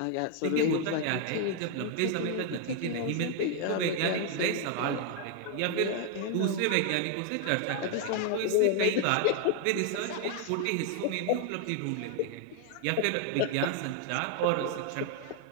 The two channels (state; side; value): different; both; correlation 0.00